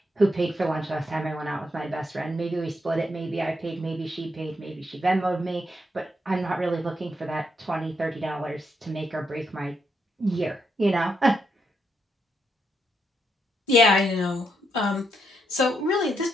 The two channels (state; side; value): normal; both; correlation 0.79